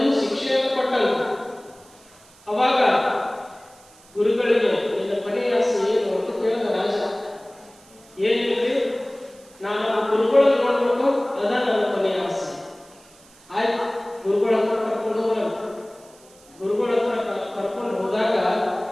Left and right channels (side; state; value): right; noise; hiss, 26 dB below the sound